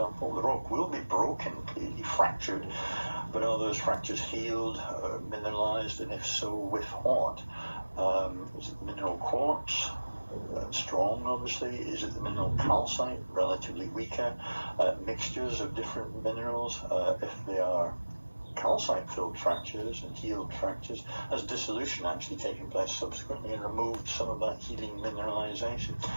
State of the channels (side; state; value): both; inverted; correlation -1.00